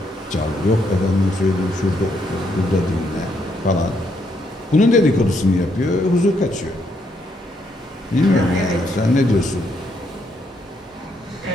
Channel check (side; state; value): both; normal; correlation 0.74